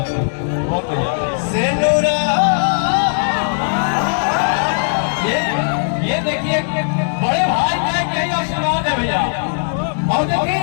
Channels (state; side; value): silent; right; digital silence